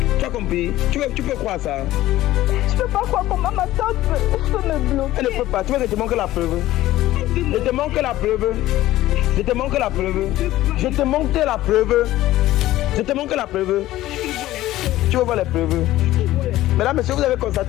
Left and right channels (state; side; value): quieter; right; 15.4 dB